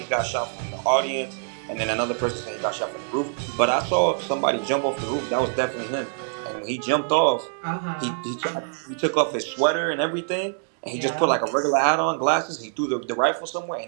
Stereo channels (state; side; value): silent; left; digital silence